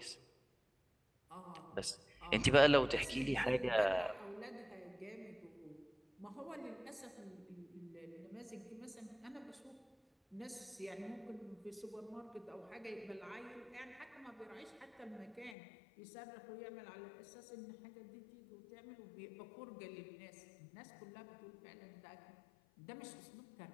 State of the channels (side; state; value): right; drops out; at 15.6 s